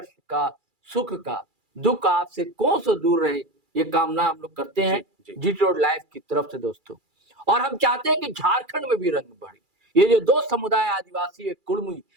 का, सुख का, दुख आपसे कौन सा दूर रहे, ये कामना हम लोग करते हैं जीटी रोड लाइव की तरफ से दोस्तों। और हम चाहते हैं कि झारखंड में भी रंग बढ़े। ये जो दो समुदाय, आदिवासी एक कुर्मी,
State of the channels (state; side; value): late; left; 2.3 ms